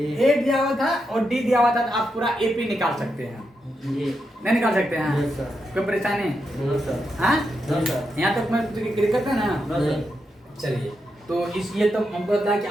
ए दिया हुआ था और डी दिया हुआ था, तो आप पूरा एपी निकाल सकते हैं, जी नहीं निकाल सकते हैं, नो सर कोई परेशानी, नो सर हाँ नो सर यहाँ तक मैं क्लियर करता है ना। नो सर चलिए तो इसलिए तो हमको लगता है कि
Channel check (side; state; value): both; normal; correlation 0.85